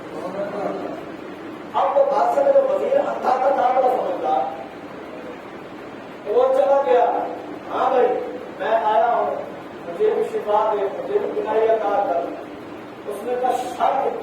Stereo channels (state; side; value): identical; both; correlation 1.00